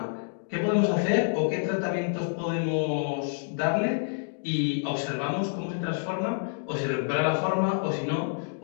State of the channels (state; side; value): silent; right; digital silence